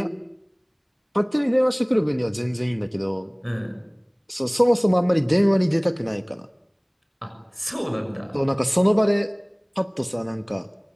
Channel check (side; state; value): both; identical; correlation 1.00